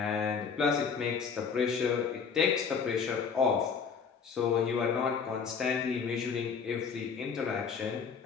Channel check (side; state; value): right; quieter; 6.0 dB